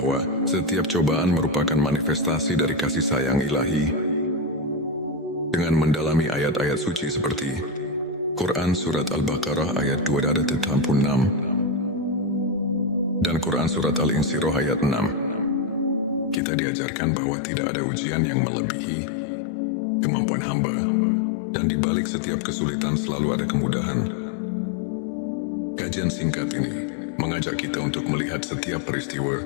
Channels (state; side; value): drops out; right; at 16.4 s